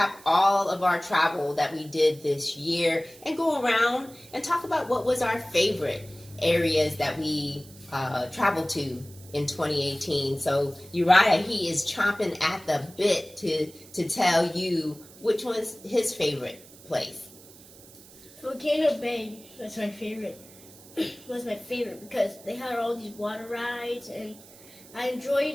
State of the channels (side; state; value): right; noise; hiss, 21 dB below the sound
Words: all of our travel that we did this year and go around and talk about what was our favorite areas that we traveled to in 2018. So Uriah, he is chomping at the bit to tell you which one's his favorite place. Volcano Bay was my favorite. Was my favorite because they had all these water rides, and I